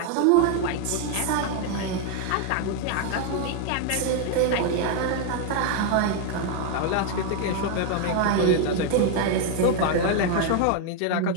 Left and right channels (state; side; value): different; both; correlation 0.00